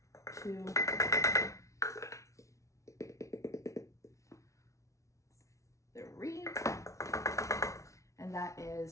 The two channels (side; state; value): right; late; 0.15 ms